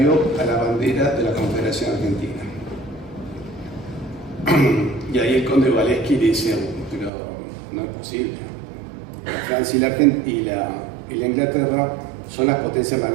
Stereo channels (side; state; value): left; drops out; at 7.1 s